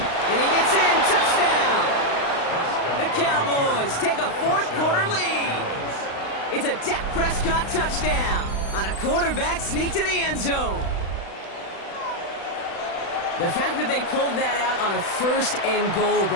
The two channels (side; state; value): right; late; 36 ms